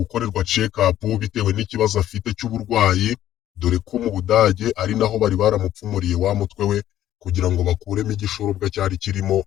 check up bitewe n'ikibazo afite cy'uburwayi, dore ko mu Budage ari naho bari baramupfumuriye wa mutwe we kugira ngo bakuremo igishorobwa cyari kirimo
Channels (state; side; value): quieter; right; 12.3 dB